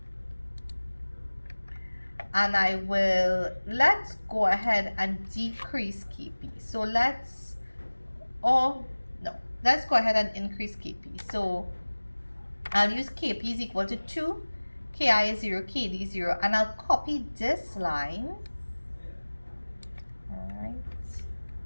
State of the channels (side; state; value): both; inverted; correlation -1.00